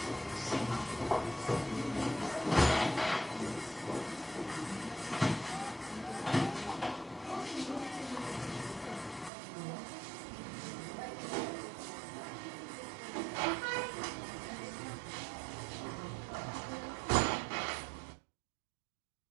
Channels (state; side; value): drops out; left; at 9.3 s